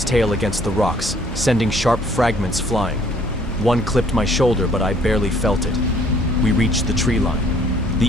tail against the rocks, sending sharp fragments flying. One clipped my shoulder, but I barely felt it. We reached the tree line.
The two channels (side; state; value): both; normal; correlation 0.60